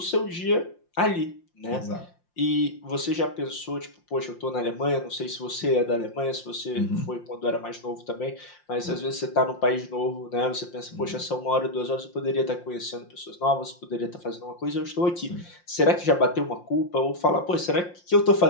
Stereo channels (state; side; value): late; right; 5.7 ms